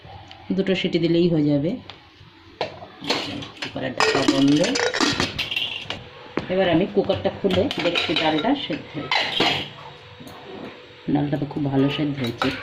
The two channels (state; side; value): identical; both; correlation 1.00